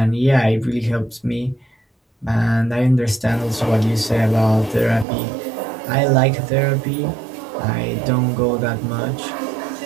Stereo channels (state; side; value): drops out; left; at 5.1 s